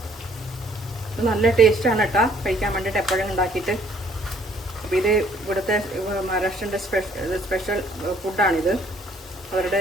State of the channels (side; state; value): both; normal; correlation 0.62